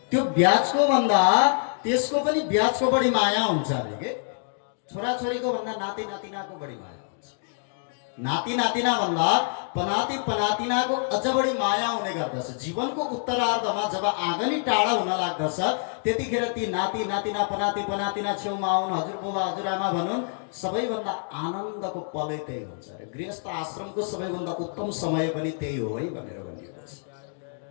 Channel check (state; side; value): silent; right; digital silence